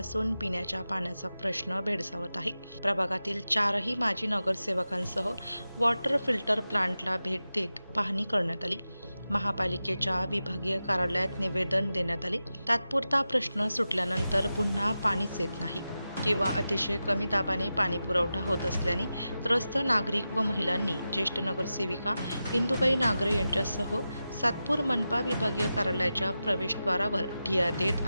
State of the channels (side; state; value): both; inverted; correlation -0.92